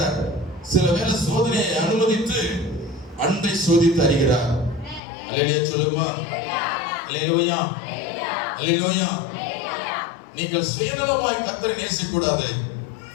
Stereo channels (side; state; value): right; drops out; at 5.0 s